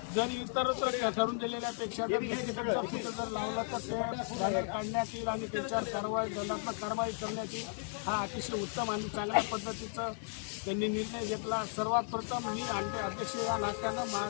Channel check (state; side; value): silent; right; 54 dB below the other